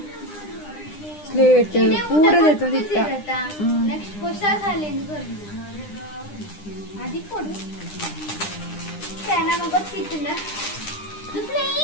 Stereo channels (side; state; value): right; late; 9.9 ms